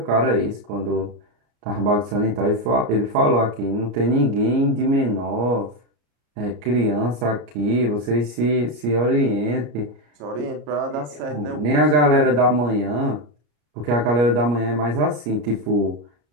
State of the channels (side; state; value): left; late; 34 ms